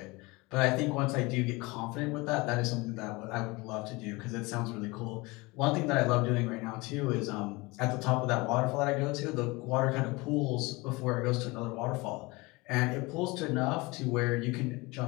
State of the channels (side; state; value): right; quieter; 24.2 dB